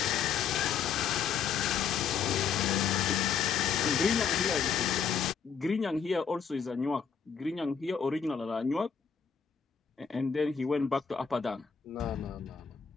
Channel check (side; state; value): right; quieter; 6.8 dB